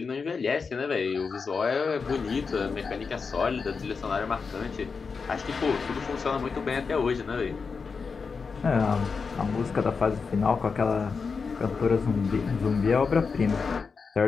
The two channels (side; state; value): right; quieter; 5.1 dB